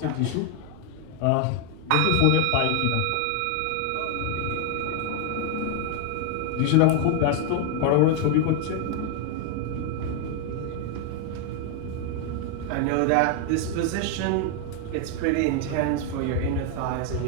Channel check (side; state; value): both; different; correlation 0.00